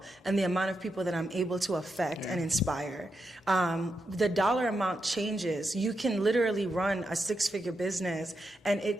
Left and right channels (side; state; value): both; normal; correlation 0.85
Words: and the amount of people that I'm able to affect and inspire. The dollar amount changes. You can literally run a 6-figure business and